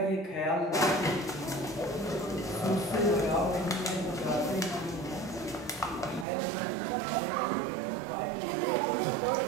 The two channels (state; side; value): drops out; left; at 6.2 s